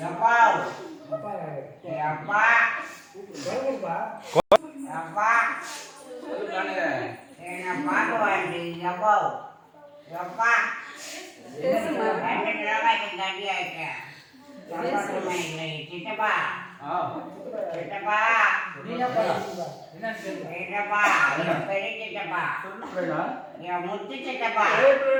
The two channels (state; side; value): identical; both; correlation 1.00